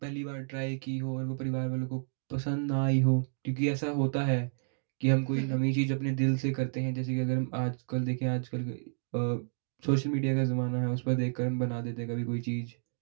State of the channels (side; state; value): left; silent; digital silence